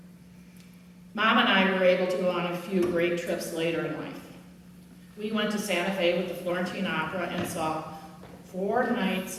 Mom and I were able to go on a few great trips later in life. We went to Santa Fe with the Florentine Opera and saw 4 nights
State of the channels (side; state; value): both; identical; correlation 1.00